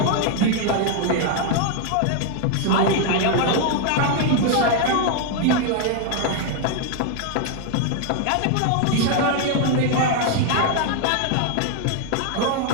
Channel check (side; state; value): both; different; correlation 0.00